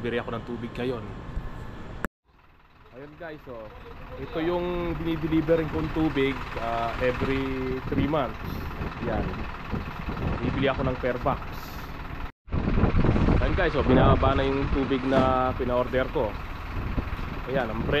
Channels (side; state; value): both; identical; correlation 1.00